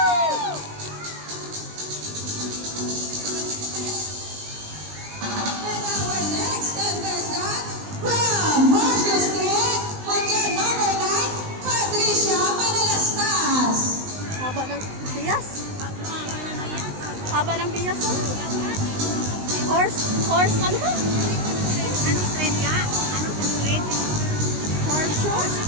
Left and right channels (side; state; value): left; late; 19 ms